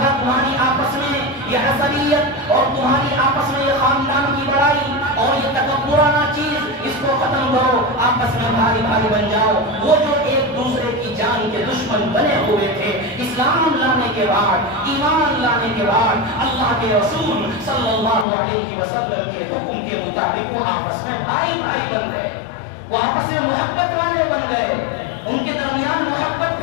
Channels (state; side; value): drops out; right; at 18.2 s